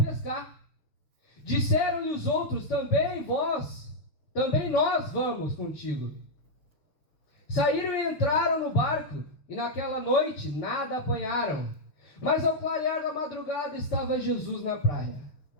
Disseram-lhe os outros: também nós vamos contigo. Saíram e entraram no barco, e naquela noite nada apanharam. Mas ao clarear da madrugada estava Jesus na praia.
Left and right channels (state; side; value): late; right; 6.4 ms